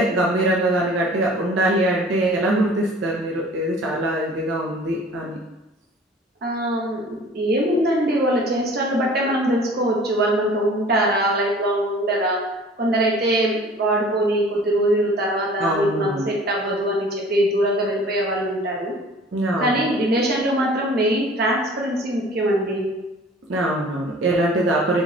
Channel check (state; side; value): normal; both; correlation 0.48